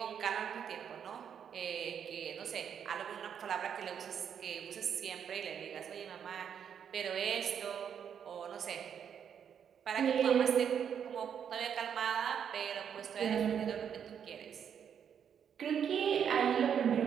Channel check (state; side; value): quieter; left; 8.1 dB